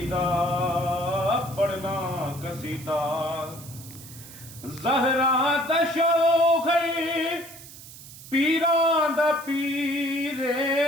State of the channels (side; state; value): right; noise; hiss, 16 dB below the sound